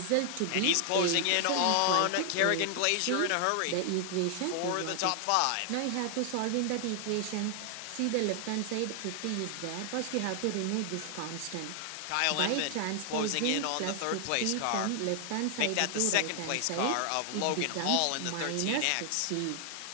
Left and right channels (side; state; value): both; different; correlation 0.00